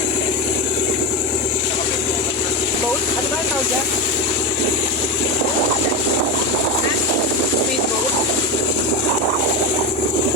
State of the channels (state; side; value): normal; both; correlation 0.17